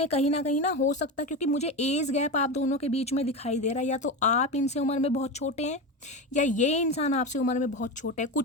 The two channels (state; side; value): normal; both; correlation 0.20